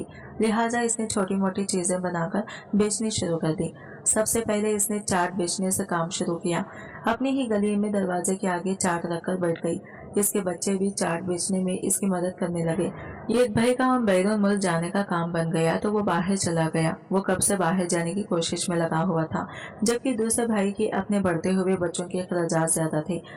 लिहाजा इसने छोटी मोटी चीजें बनाकर बेचनी शुरू कर दी। सबसे पहले इसने चाट बेचने से काम शुरू किया। अपनी ही गली में दरवाजे के आगे चाट रखकर बैठ गई। इसके बच्चे भी चाट बेचने में इसकी मदद करने लगे। एक भाई का बैरून मुल्क जाने का काम बन गया तो वो बाहर चला गया। वो कब से बाहर जाने की कोशिश में लगा हुआ था, जबकि दूसरे भाई के अपने बढ़ते हुए बच्चों के अखराजात ज्यादा थे,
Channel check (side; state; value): both; identical; correlation 1.00